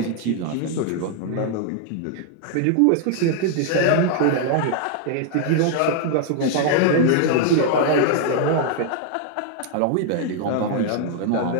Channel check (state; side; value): different; both; correlation 0.00